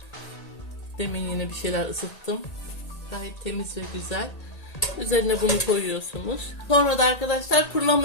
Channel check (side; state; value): right; late; 1.8 ms